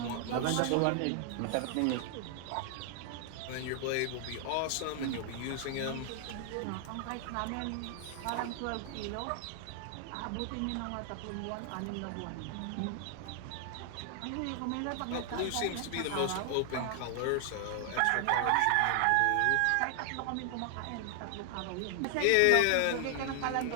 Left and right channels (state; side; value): different; both; correlation 0.00